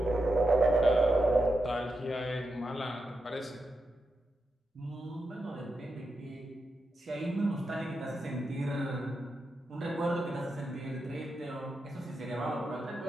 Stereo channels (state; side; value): normal; both; correlation 0.87